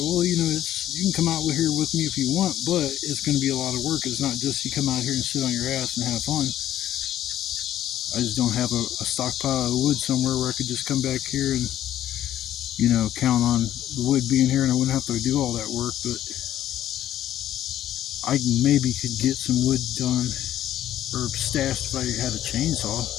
you know, you can come out here with me if you want, but it's going to be a lot of work. It's not just you come out here and sit on your ass and have fun. I just don't have a stockpile of wood somewhere where I could just come back here and, you know, count on the wood being here and I wouldn't have to do all that work. But I maybe could get some wood done or stashed if I had a chainsaw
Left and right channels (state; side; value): quieter; right; 12.3 dB